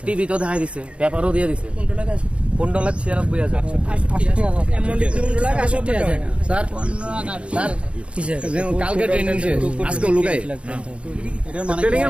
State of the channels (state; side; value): late; left; 0.060 ms